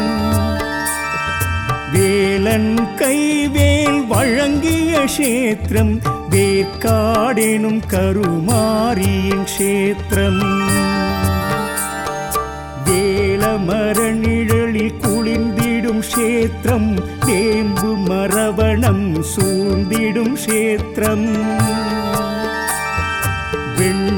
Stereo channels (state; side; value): identical; both; correlation 1.00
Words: வேலன் கைவேல் வழங்கிய க்ஷேத்திரம், வேற்காடெனும் கருமாரியின் க்ஷேத்திரம். வேலமர நிழலில் குளிர்ந்திடும் க்ஷேத்திரம், வேம்பு மரவணம் சூழ்ந்திடும் க்ஷேத்திரம்.